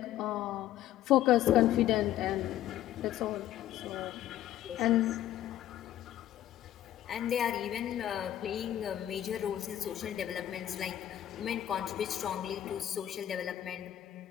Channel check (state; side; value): quieter; right; 12.5 dB